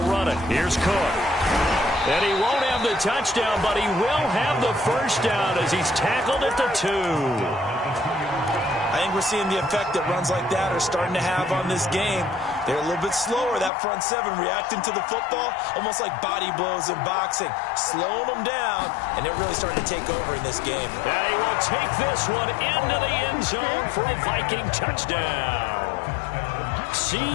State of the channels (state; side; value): drops out; right; at 13.7 s